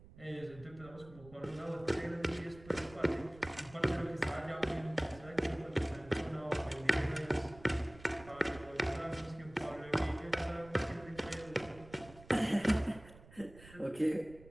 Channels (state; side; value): noise; right; rumble, 20 dB below the sound